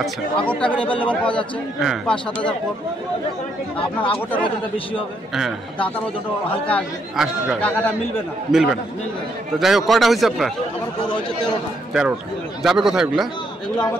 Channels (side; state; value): both; normal; correlation 0.74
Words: আচ্ছা আগরটা অ্যাভেলেবেল পাওয়া যাচ্ছে, হ্যাঁ। 5-7 হাজার কম। আপনার আগরটার ওজনটা বেশি হবে, হ্যাঁ দাতার ওজনটা হালকা আসবে, আসবে, টাকাটা মিলবে না। মিলবে না। তো যাই হোক, কয়টা হয়েছে আপনার? আমার গরু হচ্ছে 13টা। 13টা। যাবে কোথায় এগুলা? এগুলো